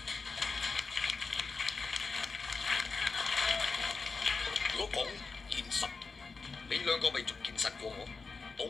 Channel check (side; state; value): right; quieter; 4.4 dB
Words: 如果講現實，你兩個咪仲現實過我？